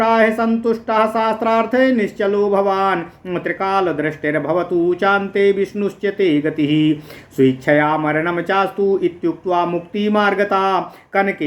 सन्तुष्टः शास्त्रार्थे निश्चलो भवान् त्रिकालदृष्टिर्भवतु चान्ते विष्णुश्च ते गतिः स्वेच्छया मरणं चास्तु इत्युक्त्वा मुक्तिमार्गता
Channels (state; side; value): identical; both; correlation 1.00